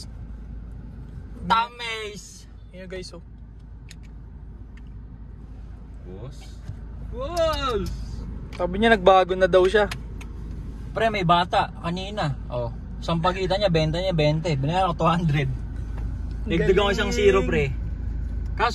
Tames! Ayan guys, oh. Boss? Boss! Sabi niya nagbago na daw siya. Pre, may bata kanina. Oh, isang pagkita niya, benta niya 20. Binayaran ko 200. Nagdagang ko isang 0, pre.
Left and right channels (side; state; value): both; identical; correlation 1.00